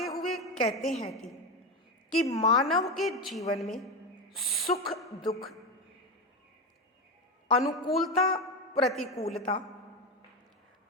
हुए कहते हैं कि मानव के जीवन में सुख दुख, अनुकूलता प्रतिकूलता,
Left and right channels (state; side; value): normal; both; correlation 0.16